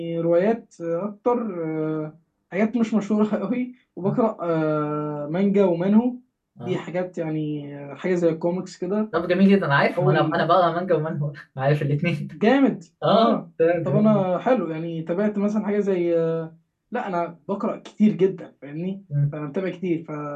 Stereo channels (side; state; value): both; identical; correlation 1.00